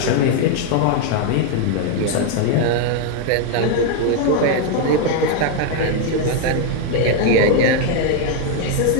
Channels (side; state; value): both; different; correlation 0.01